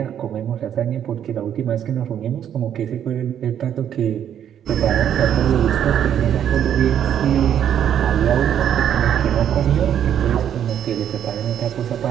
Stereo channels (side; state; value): left; quieter; 9.6 dB